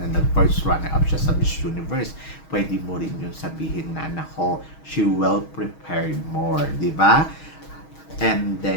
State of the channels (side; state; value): right; late; 6.3 ms